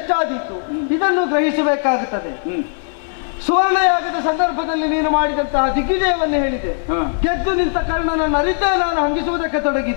ಎಷ್ಟಾದೀತು ಇದನ್ನು ಗ್ರಹಿಸಬೇಕಾಗುತ್ತದೆ. ಸುವರ್ಣಯಾಗದ ಸಂದರ್ಭದಲ್ಲಿ ನೀನು ಮಾಡಿದಂತಹ ದಿಗ್ವಿಜಯವನ್ನು ಹೇಳಿದೆ. ಗೆದ್ದು ನಿಂತ ಕರ್ಣನನ್ನು ಅರಿತೇ ನಾನು ಹಂಗಿಸುವುದಕ್ಕೆ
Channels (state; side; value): silent; right; 58 dB below the other